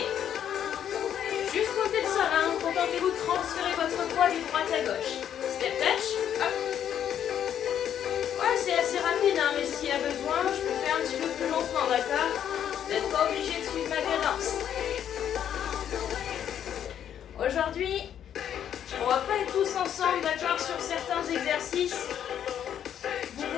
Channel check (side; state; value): right; quieter; 9.6 dB